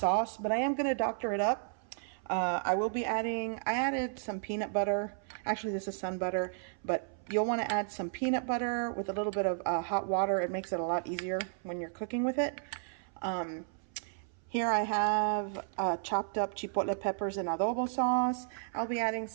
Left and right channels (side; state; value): left; silent; 56 dB below the other